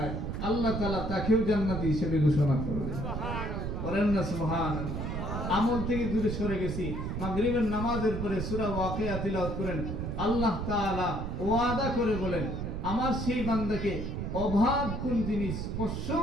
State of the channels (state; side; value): noise; right; rumble, 3 dB below the sound